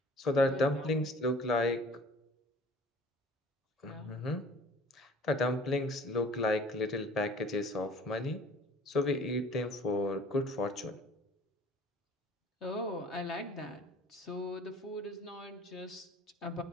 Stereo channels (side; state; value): both; normal; correlation 0.49